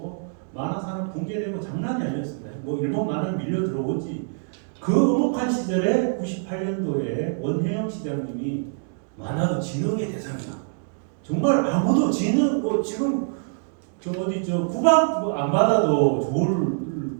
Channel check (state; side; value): silent; left; digital silence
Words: 만화 산업 붕괴되고 장난이 아니었습니다. 뭐 일본 만화 밀려 들어오지. 그 엄혹한 시절에 98년도에 원혜영 시장님이 만화도 진흥의 대상이다. 정말 아무도 지는 뭐 지금 저 어디 저 구박 뭐안 받아도 좋을